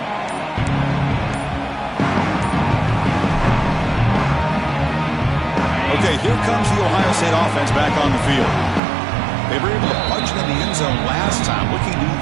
Okay, here comes the Ohio State offense back on the field. They were able to punch it in the end zone last time. Looking to do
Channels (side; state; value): left; drops out; at 8.8 s